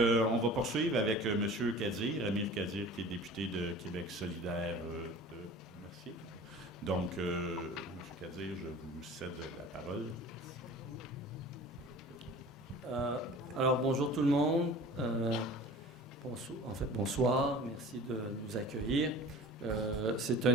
va poursuivre avec M. Kadir, Amir Kadir, qui est député de Québec solidaire de Mercier. Donc, M. Kadir, je vous cède la parole. Alors, bonjour tout le monde. Bonsoir. Merci de nous accueillir. C'est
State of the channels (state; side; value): normal; both; correlation 0.41